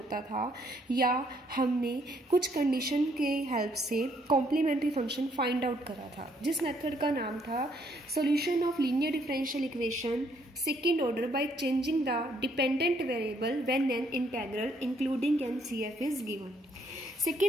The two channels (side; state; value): both; normal; correlation 0.69